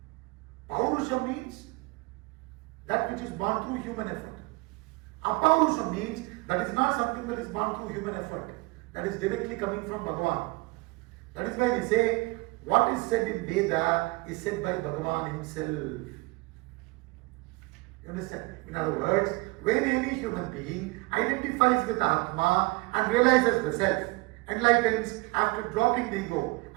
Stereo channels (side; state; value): left; quieter; 24.0 dB